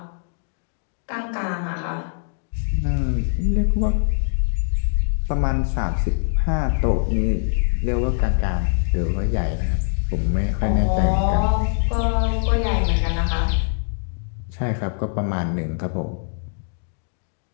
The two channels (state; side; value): silent; right; digital silence